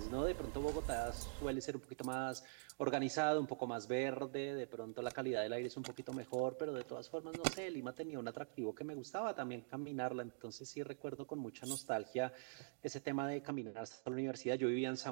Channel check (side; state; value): left; silent; digital silence